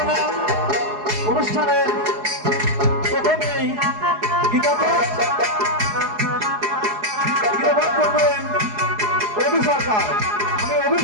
না। অনুষ্ঠানের প্রথমেই গীতাপাঠ করবেন রবি সরকার। আমি রবি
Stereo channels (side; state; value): left; late; 4.7 ms